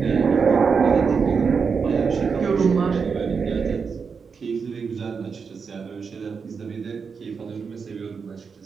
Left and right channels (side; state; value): left; quieter; 5.6 dB